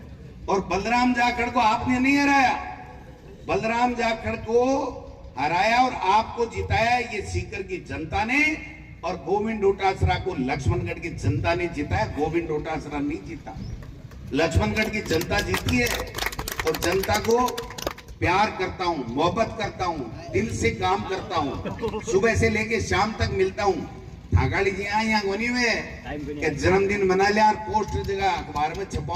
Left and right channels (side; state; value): both; identical; correlation 1.00